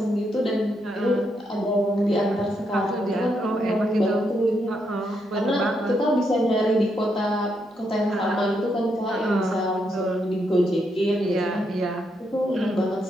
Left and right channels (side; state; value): both; normal; correlation 0.79